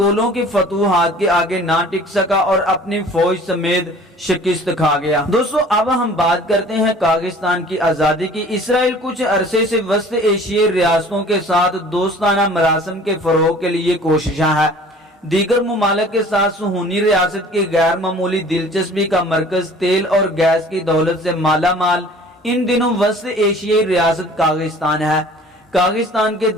کی فتوحات کے آگے نہ ٹک سکا اور اپنی فوج سمیت شکست کھا گیا۔ دوستو، اب ہم بات کرتے ہیں کاغستان کی آزادی کی۔ اسرائیل کچھ عرصے سے وسط ایشیائی ریاستوں کے ساتھ دوستانہ مراسم کے فروغ کے لیے کوششاں ہے۔ دیگر ممالک کے ساتھ صہیونی ریاست کی غیر معمولی دلچسپی کا مرکز، تیل اور گیس کی دولت سے مالا مال ان دنوں وسط ایشیائی ریاست کاغستان ہے۔ کاغستان کے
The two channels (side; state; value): both; normal; correlation 0.48